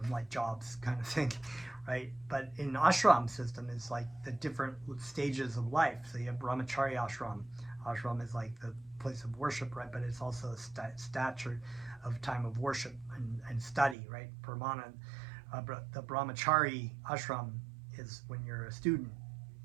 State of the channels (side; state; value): left; drops out; at 14.0 s